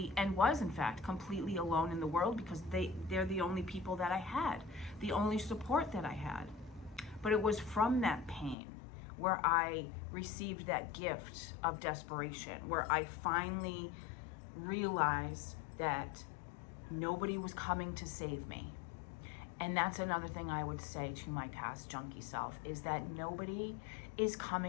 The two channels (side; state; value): right; drops out; at 8.6 s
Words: and was in fact completely alone in the world because they're the only people that I had, the only support that I had. But it was from that pain where I received that gift of desperation, where I finally realized that nobody was coming to save me. And that's another thing I would say to my past junkie self, is that nobody is